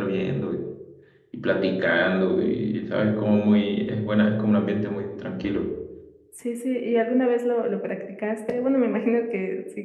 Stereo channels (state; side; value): identical; both; correlation 1.00